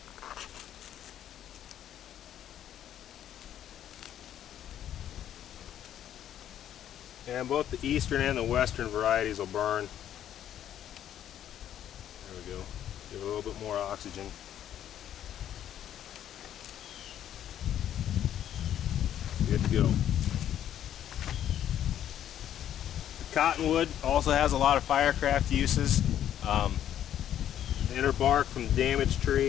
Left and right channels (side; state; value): right; quieter; 10.7 dB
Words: And both the eastern and the western varieties will burn. There we go. Give it a little bit more oxygen. Good to go. Cottonwood also has a lot of firecraft uses. The inner bark from the damaged